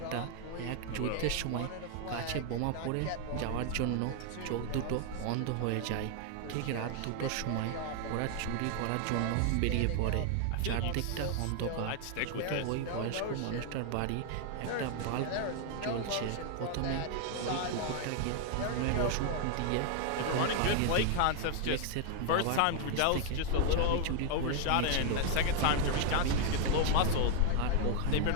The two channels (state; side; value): different; both; correlation 0.00